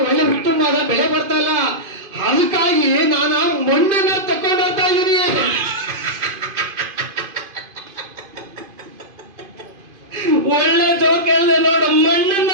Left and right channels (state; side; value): late; left; 2.5 ms